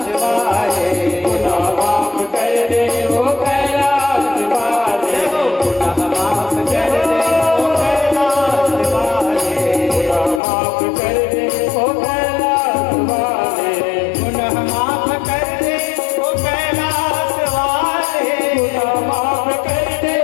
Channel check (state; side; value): drops out; right; at 10.4 s